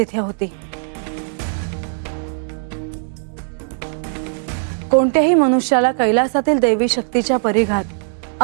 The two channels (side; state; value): left; silent; digital silence